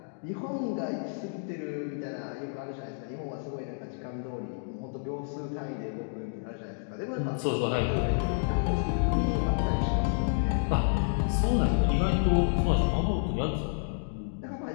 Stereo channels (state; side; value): silent; right; digital silence